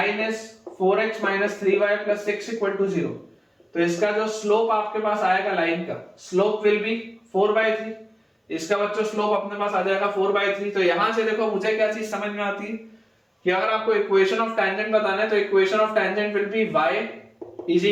is 4x minus 3y plus 6 equal to 0। तो इसका जो स्लोप आपके पास आएगा लाइन का, स्लोप विल बी 4/3, इसका बच्चों स्लोप अपने पास आ जाएगा 4/3। तो यहां से देखो मुझे क्या चीज समझ में आती है कि अगर आपको इक्वेशन ऑफ टेंजेंट बताना है तो equation of tangent will be y is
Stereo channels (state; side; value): identical; both; correlation 1.00